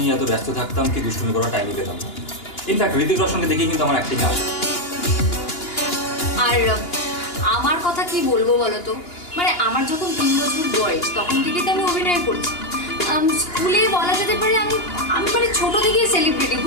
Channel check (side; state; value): right; late; 2.9 ms